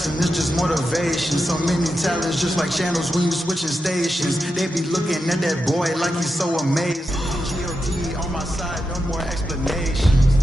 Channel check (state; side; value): normal; both; correlation 0.88